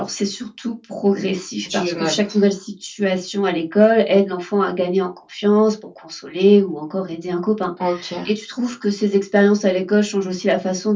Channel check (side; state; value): both; identical; correlation 1.00